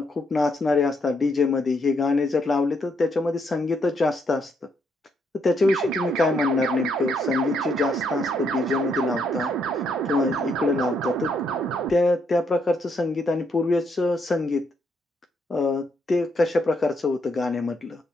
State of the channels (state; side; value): normal; both; correlation 0.74